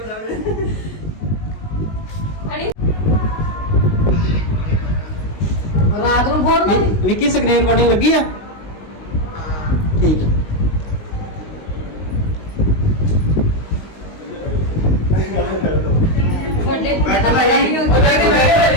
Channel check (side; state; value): right; late; 19 ms